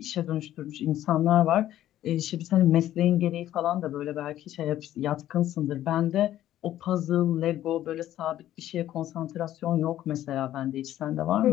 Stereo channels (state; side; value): quieter; right; 12.9 dB